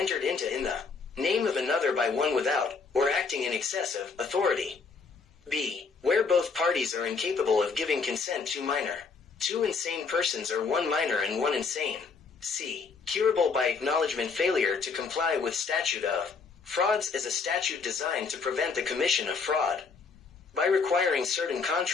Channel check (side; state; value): right; quieter; 4.9 dB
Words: into in the name of another by one without, or acting in excess of, authority. B. Where both parties are incapable of giving consent to minor. Two insane persons or one minor and one insane. C. Curable by acknowledgement. Failure to comply with statute of frauds is a statute designed to prevent the commission of fraud by requiring certain